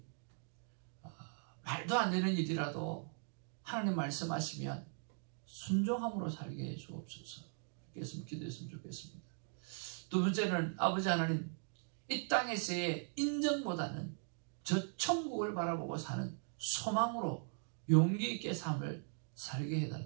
말도 안 되는 일이라도 하나님 말씀하시면 순종함으로 살게 해 주옵소서. 이렇게 기도했으면 좋겠습니다. 두 번째는 아버지 하나님, 이 땅에서의 인정보다는 저 천국을 바라보고 사는 소망으로 용기 있게 삶을 살게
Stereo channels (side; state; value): left; silent; 51 dB below the other